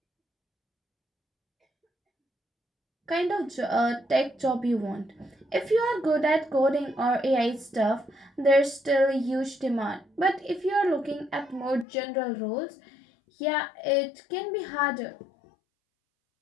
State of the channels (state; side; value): drops out; right; at 11.9 s